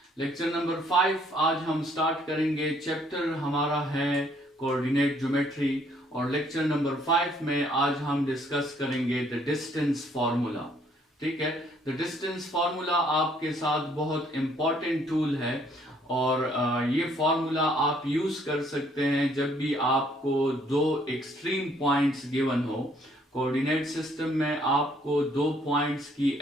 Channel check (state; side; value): normal; both; correlation 0.65